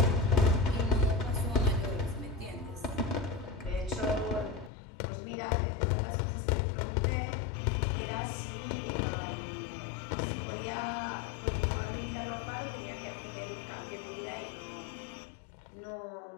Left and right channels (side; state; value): right; drops out; at 4.7 s